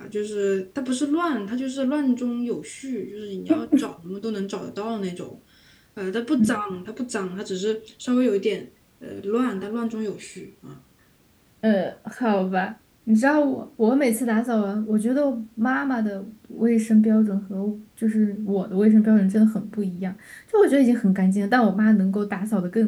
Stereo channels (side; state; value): both; identical; correlation 1.00